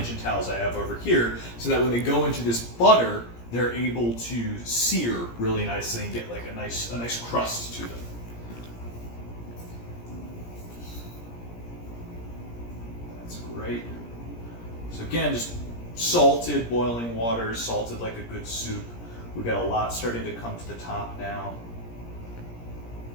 towels I have over here, so that when they go into this butter, they're able to sear really nicely and get like a nice crust to them. That's great. So again, just salted boiling water, salted like a good soup. We've got a lot starting to come to the top now.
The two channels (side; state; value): right; late; 17 ms